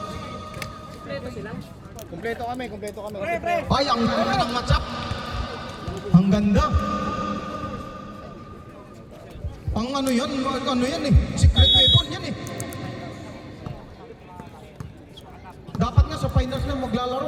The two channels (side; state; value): both; identical; correlation 1.00